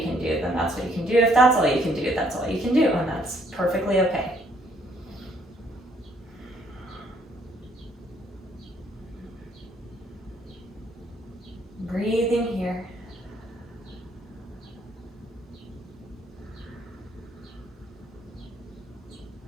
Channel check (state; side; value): normal; both; correlation 0.66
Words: can do, then that's what you can do. If that's all you can do, that's all you can do, and that's perfectly okay. Breathing here.